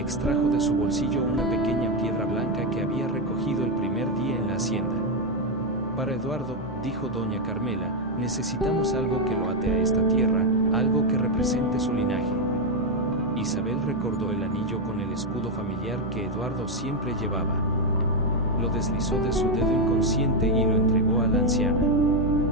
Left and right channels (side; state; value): both; normal; correlation 0.04